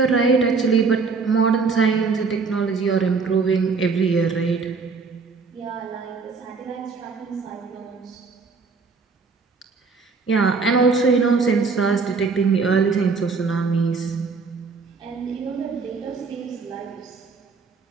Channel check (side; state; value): left; quieter; 4.7 dB